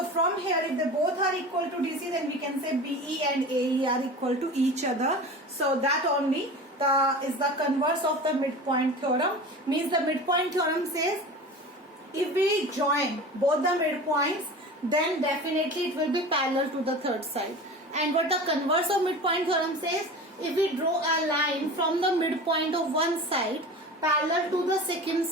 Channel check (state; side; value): normal; both; correlation 0.34